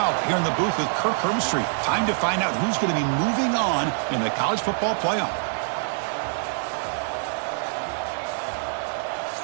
here in the booth with Kirk Herbstreit. Time to find out who's going to be moving on in the college football playoff.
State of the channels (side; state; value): left; silent; digital silence